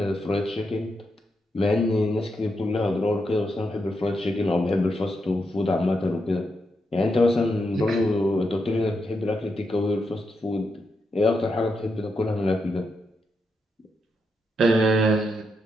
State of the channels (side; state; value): both; normal; correlation 0.83